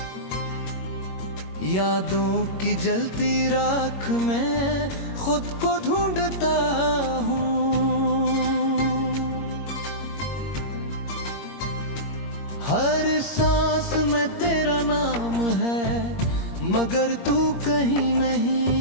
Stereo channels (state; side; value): late; right; 21 ms